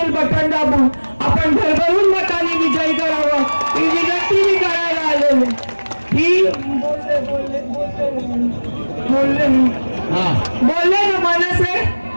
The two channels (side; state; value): both; inverted; correlation -1.00